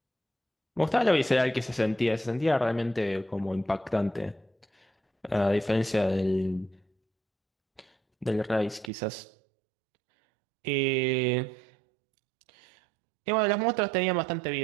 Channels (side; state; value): left; drops out; at 8.9 s